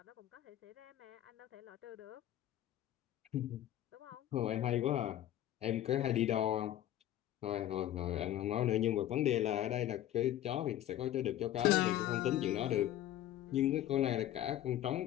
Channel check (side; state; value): right; quieter; 12.8 dB